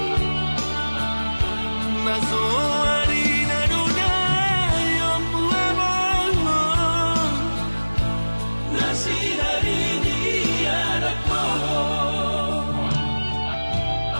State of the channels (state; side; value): inverted; both; correlation -1.00